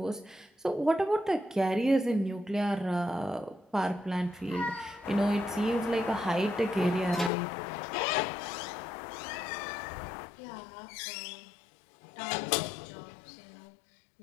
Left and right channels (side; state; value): right; drops out; at 7.3 s